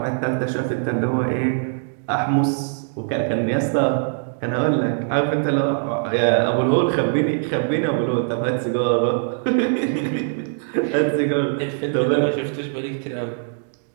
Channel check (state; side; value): silent; left; digital silence